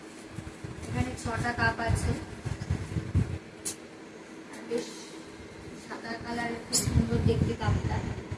এখানে 6টা কাপ আছে, বেশ সাদা কালারের, খুব সুন্দর দেখতে কাপটা,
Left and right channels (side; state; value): both; identical; correlation 1.00